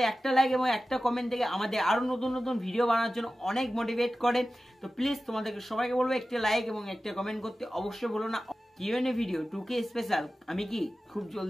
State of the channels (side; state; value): both; normal; correlation 0.95